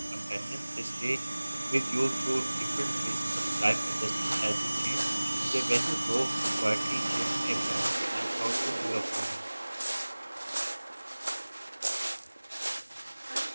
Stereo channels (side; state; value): both; inverted; correlation -1.00